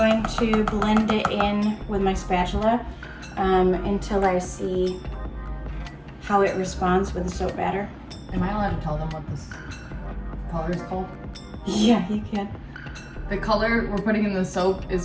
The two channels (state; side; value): identical; both; correlation 1.00